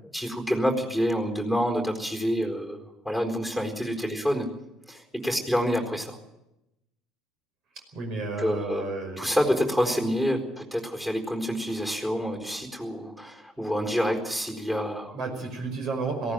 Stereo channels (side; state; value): both; normal; correlation 0.85